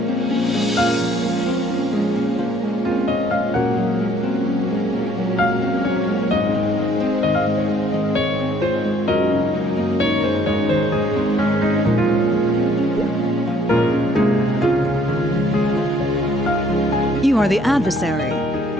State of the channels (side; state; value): both; normal; correlation 0.62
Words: You are the adversary.